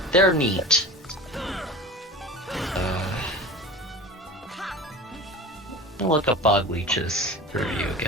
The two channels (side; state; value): both; normal; correlation 0.35